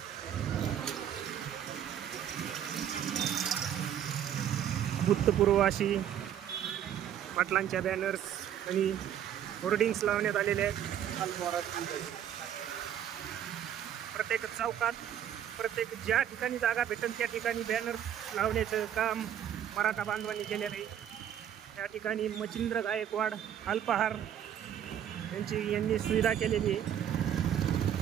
भूतपूर्व अशी पाटलांच्या बॅनर्स आणि होर्डिंग्स लावण्यात आलेले आहेत. प्रत्येक चौकात, प्रत्येक ज्या ठिकाणी जागा भेटेल त्या ठिकाणी बॅनर्स लावण्याचं काम मराठा बांधवांनी केलेलं आहे. या ठिकाणी मच्छिंद्र गायकवाड अल्पाहार यांनी सुविधा केलेली आहे.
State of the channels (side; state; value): left; quieter; 10.0 dB